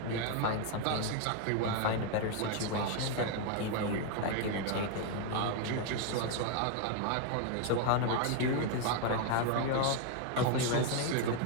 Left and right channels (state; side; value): different; both; correlation 0.00